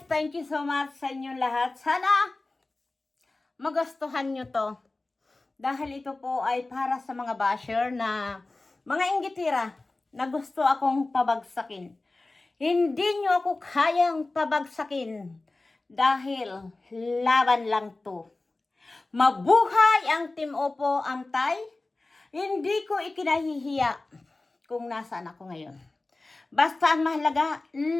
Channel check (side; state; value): right; quieter; 3.1 dB